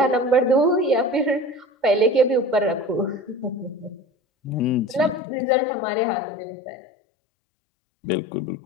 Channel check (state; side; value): drops out; right; at 5.2 s